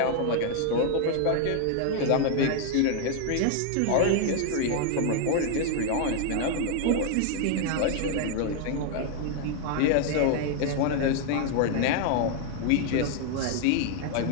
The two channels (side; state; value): both; different; correlation 0.00